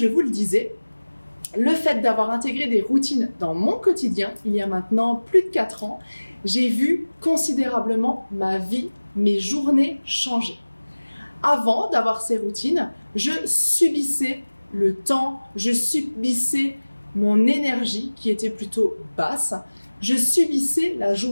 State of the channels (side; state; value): both; inverted; correlation -1.00